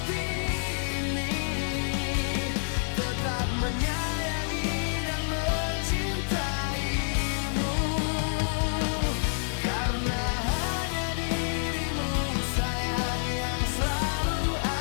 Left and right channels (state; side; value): silent; right; 59 dB below the other